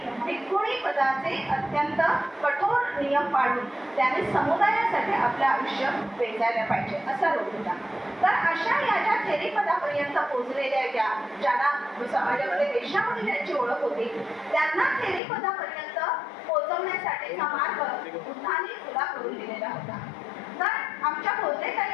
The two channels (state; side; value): drops out; right; at 15.2 s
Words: भिकुणी पदाचे अत्यंत कठोर नियम पाळून त्याने समुदायासाठी आपलं आयुष्य वेचायला पाहिजे असा रोग होता. तर अशा या ज्या थेरी पदापर्यंत पोचलेल्या ज्यांना समाजामध्ये वेश्या म्हणून ज्यांची ओळख होती त्यांना थेरी पदापर्यंत पोहोचवण्यासाठीचा मार्ग बुद्धांनी खुला करून दिलेला होता. तर आमच्या भोजने